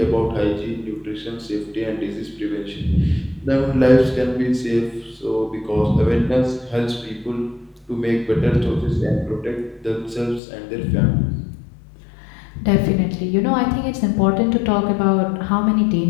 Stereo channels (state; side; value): drops out; right; at 10.4 s